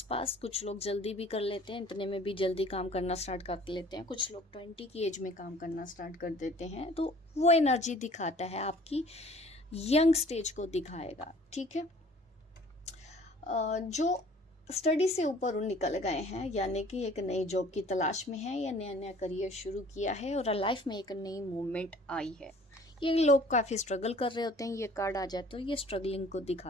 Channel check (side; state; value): both; normal; correlation 0.52